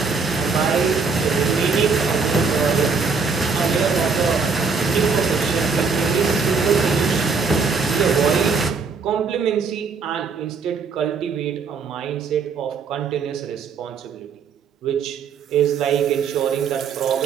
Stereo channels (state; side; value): quieter; left; 5.0 dB